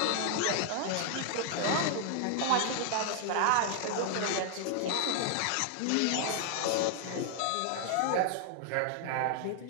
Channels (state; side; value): different; both; correlation 0.00